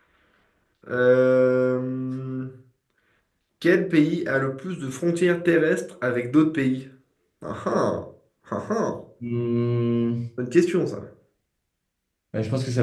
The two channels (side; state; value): both; identical; correlation 1.00